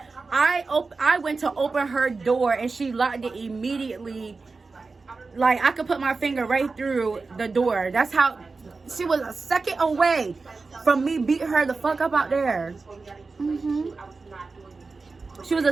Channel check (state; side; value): quieter; left; 4.1 dB